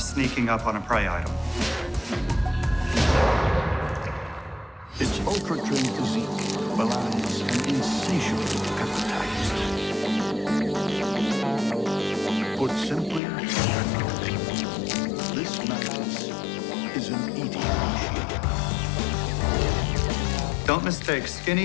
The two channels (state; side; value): drops out; right; at 13.2 s